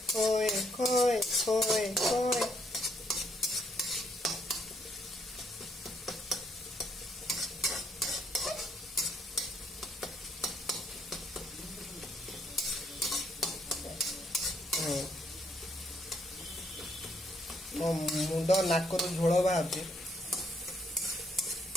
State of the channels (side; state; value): both; normal; correlation 0.70